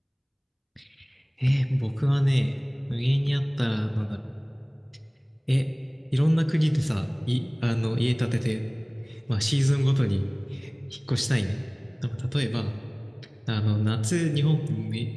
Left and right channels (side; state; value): both; identical; correlation 1.00